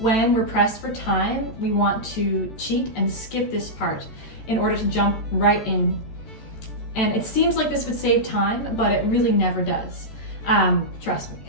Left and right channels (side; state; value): right; late; 13 ms